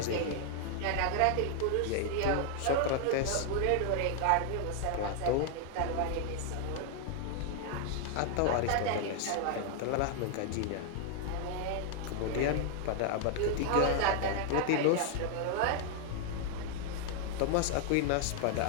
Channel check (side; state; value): both; different; correlation 0.00